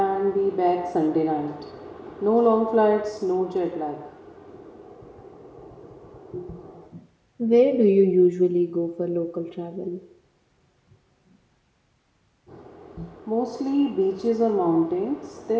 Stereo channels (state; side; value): identical; both; correlation 1.00